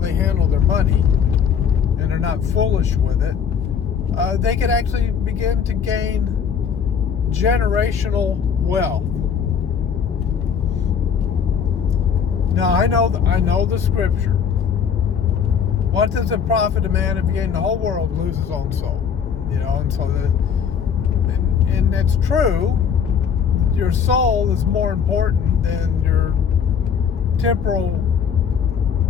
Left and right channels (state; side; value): quieter; right; 7.2 dB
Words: handle their money and are not foolish with it. They could actually begin to gain generational wealth. Now, I know the scripture. What does it profit a man if he gain the whole world and lose his own soul? And so and that's true. Your soul is more important than your temporal